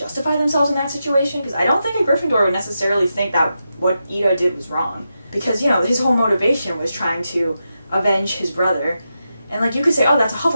themselves in that situation, because I don't think a Gryffindor would necessarily think that what Ida did was wrong, because, you know, his whole motivation was trying to avenge his brother. And, like, you could say, oh, that's a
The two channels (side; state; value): both; inverted; correlation -0.88